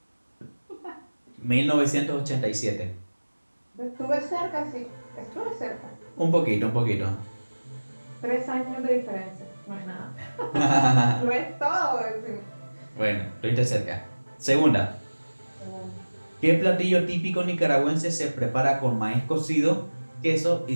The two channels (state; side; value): inverted; both; correlation -1.00